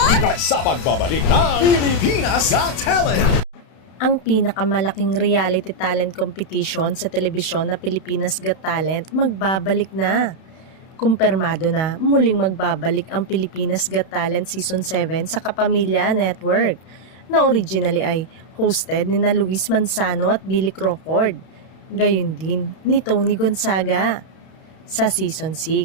Dahil sa pagbabalik ng Pilipinas Got Talent! Ang pinakamalaking reality talent competition sa telebisyon na Pilipinas Got Talent magbabalik na. Kumpirmado na muling magbabalik ang Pilipinas Got Talent Season 7 sa Kapamilya Network na originally ay hosted ni na Luis Manzano at Billy Crawford. Gayon din ni Tony Gonzaga. Sa Season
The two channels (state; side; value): late; right; 32 ms